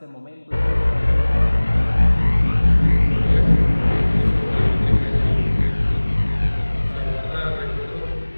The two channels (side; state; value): both; inverted; correlation -1.00